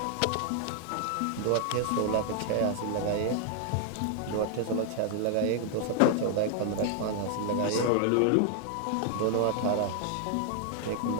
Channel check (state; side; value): different; both; correlation 0.00